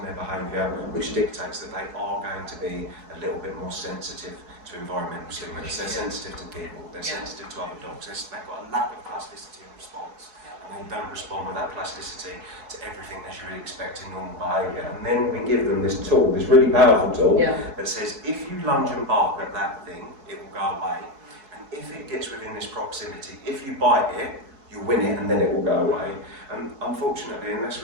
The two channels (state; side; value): late; left; 4.7 ms